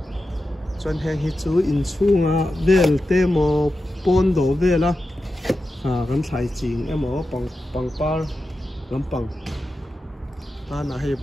chuan heng hi chu in chunga vel te mo pon do vela kan thlai ching emo pangpar lampang ta na hei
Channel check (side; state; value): both; normal; correlation 0.92